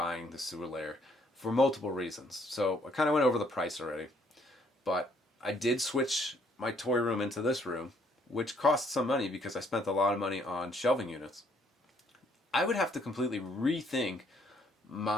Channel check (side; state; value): both; normal; correlation 0.66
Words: the sewer layer for multiple reasons. So I kind of went over the price already, but I did switch my toy room into this room, which cost some money because I spent a lot of money on shelving units. I would have to completely rethink